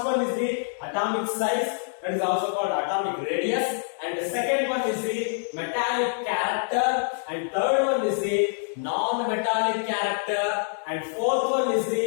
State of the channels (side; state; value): right; silent; digital silence